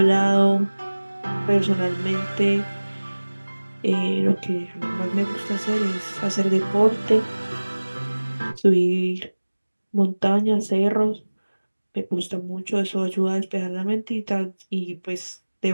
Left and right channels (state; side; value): inverted; both; correlation -1.00